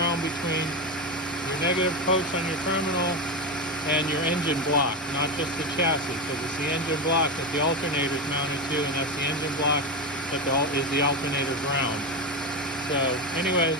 between your negative post on your terminal and your engine block, not just the chassis, because it's the engine block that the alternator is mounted to, and that's the engine block that is the alternator ground. So anyways,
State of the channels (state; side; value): normal; both; correlation 0.15